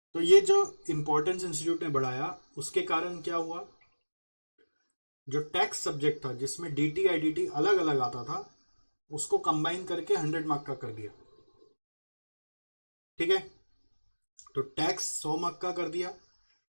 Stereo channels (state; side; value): inverted; both; correlation -1.00